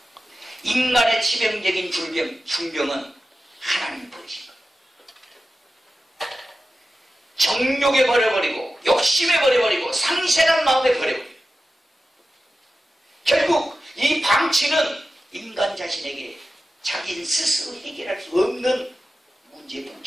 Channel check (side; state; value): both; normal; correlation 0.93